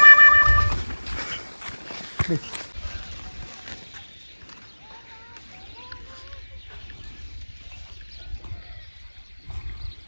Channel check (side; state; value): both; inverted; correlation -1.00